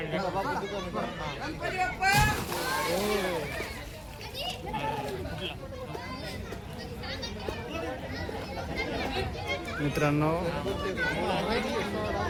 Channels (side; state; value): both; identical; correlation 1.00